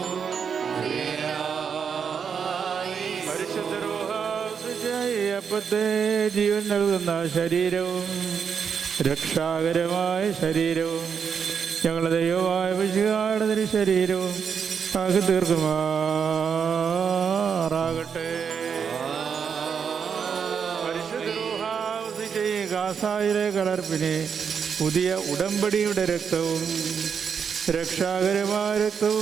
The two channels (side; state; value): left; quieter; 6.8 dB